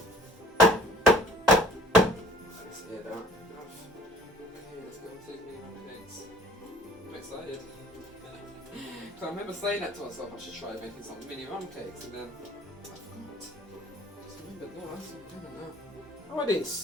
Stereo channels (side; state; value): both; normal; correlation 0.52